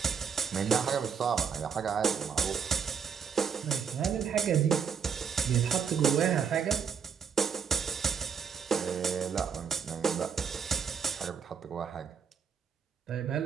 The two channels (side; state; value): left; quieter; 6.8 dB